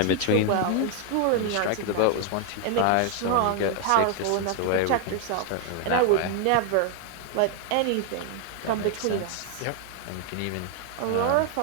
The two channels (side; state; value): both; different; correlation 0.00